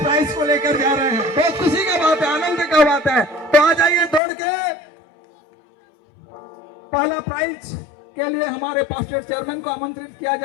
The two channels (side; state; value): right; drops out; at 4.2 s